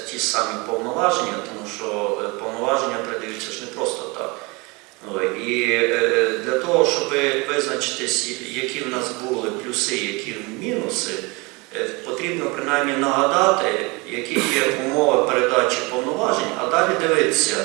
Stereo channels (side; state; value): left; quieter; 26.5 dB